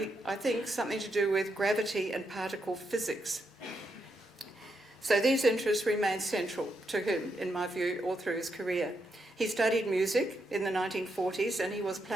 I think, something to do with gravity and particle physics. So these interests remain central to him, in my view, all through his career. He studied music in the 1940s and he was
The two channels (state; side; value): normal; both; correlation 0.81